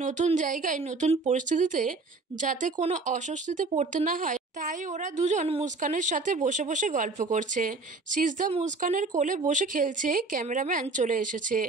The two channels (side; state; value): left; quieter; 3.7 dB